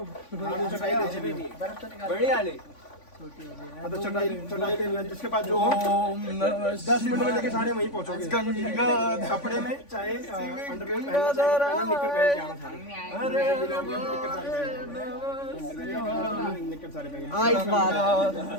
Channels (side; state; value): right; late; 3.5 ms